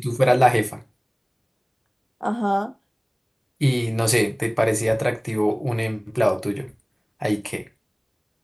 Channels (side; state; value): both; identical; correlation 1.00